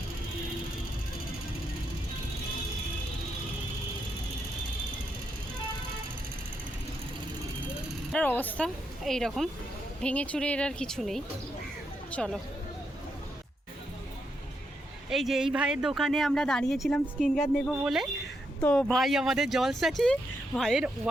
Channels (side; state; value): both; normal; correlation 0.81